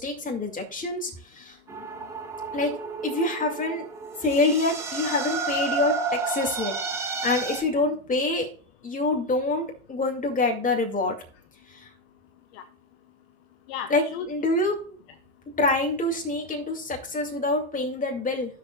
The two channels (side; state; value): both; normal; correlation 0.10